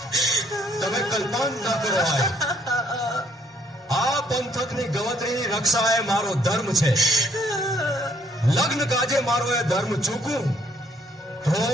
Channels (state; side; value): normal; both; correlation 0.66